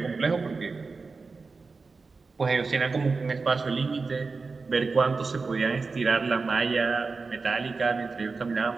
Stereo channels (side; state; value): left; quieter; 4.3 dB